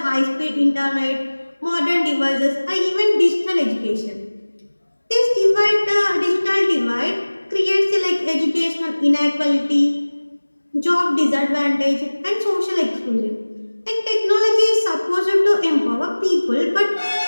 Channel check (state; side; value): inverted; both; correlation -1.00